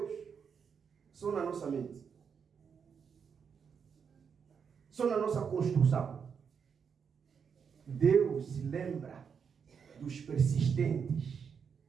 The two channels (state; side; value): quieter; left; 6.6 dB